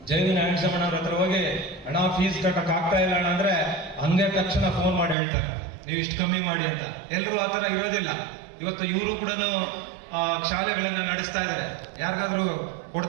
JV ನಾರಾಯಣಸ್ವಾಮಣ್ಣವ್ರ ಹತ್ರ ಹೋಗಿ ಹಣ ಫೀಸ್ ಕಟ್ಟಕ್ ಆಗ್ತಾ ಇಲ್ಲ ಅಣ್ಣ ಅಂದ್ರೆ ಹಂಗೆ ತಕ್ಷಣ ಫೋನ್ ಮಾಡಿ ಹೇಳ್ತಾರೆ ನೀವು ಇಷ್ಟು ಕಮ್ಮಿ ಮಾಡಿ ಅಂತ. ಎಲ್ಲರೂ ಆತರ ಇರೋದಿಲ್ಲ. ಇವತ್ತು ಇವರು ಕೂಡ ಶಾಲೆಗಳನ್ನ ನಡೆಸ್ತಾ ಇದ್ದಾರೆ. ಯಾರಿಗಾದ್ರೂ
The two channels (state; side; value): drops out; left; at 5.2 s